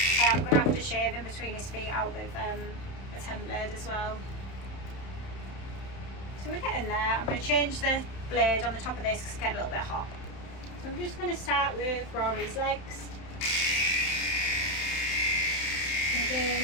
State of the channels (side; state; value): right; late; 31 ms